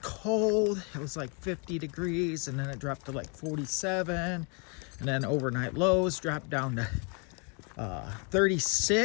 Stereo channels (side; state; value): right; quieter; 36.4 dB